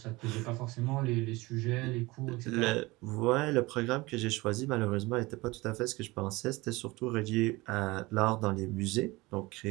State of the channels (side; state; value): left; quieter; 22.0 dB